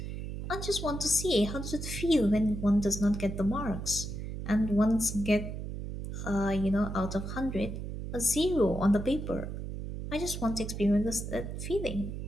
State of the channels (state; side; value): noise; right; hum, 6 dB below the sound